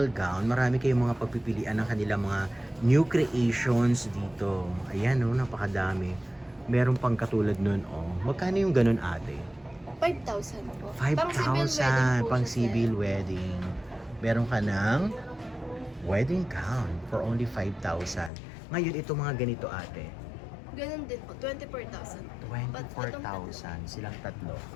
Gown. Marami kayong mga pagpipilian ng kanilang mga new creations dito. Ayan, napakadami. Meron pang katulad nun, Magkano yung ganun, ate? 5,000 po. 5,000 pang civil wedding. Meron ka ng wedding gown for only 5,000. Ngayon, ito mga ganito, ate. Ganun din po, 24,000. 24,000 silang tatlo.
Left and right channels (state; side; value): drops out; right; at 18.3 s